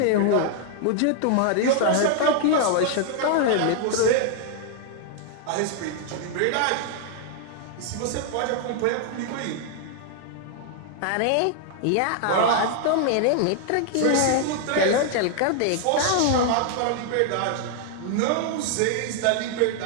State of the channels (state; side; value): different; both; correlation 0.00